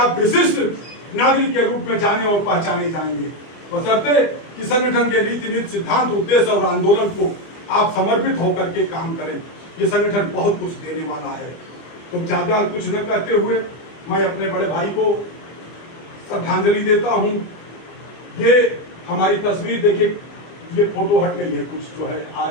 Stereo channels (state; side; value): late; right; 25 ms